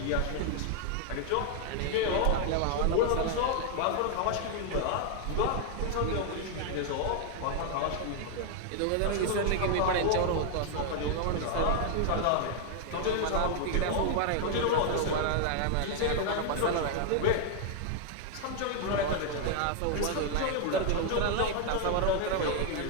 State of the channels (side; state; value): both; different; correlation 0.00